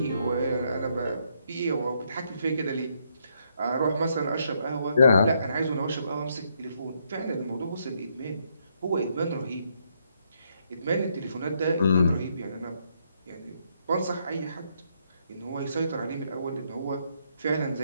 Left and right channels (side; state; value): both; inverted; correlation -0.75